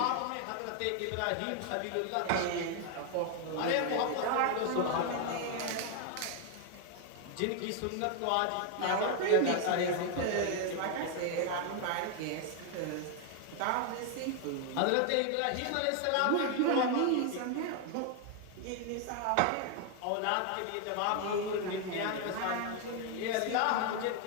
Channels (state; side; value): different; both; correlation 0.01